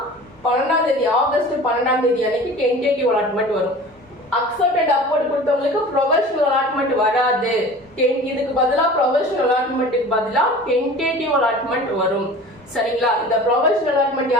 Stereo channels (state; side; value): normal; both; correlation 0.40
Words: 12ஆம் தேதி ஆகஸ்ட் 12ஆம் தேதி அன்னைக்கு டென்டேட்டிவ் அலாட்மெண்ட் வரும். அக்செப்ட் அண்ட் அப்வர்ட் கொடுத்தவங்களுக்கு ப்ரொஃபஷனல் அலாட்மெண்ட் வராது. இதுக்கு பதிலா ப்ரொஃபஷனல் அலாட்மெண்ட்டுக்கு பதிலா டென்டேட்டிவ் அலாட்மெண்ட் வரும். சரிங்களா? இந்த ப்ரொஃபஷனல் அலாட்மெண்ட்